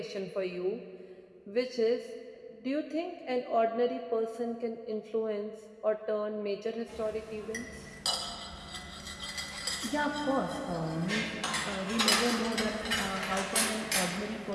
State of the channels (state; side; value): identical; both; correlation 1.00